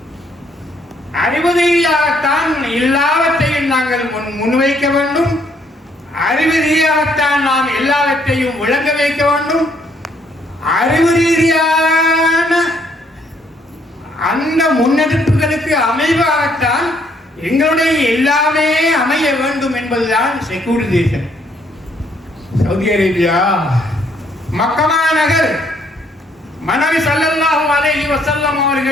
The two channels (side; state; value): both; normal; correlation 0.68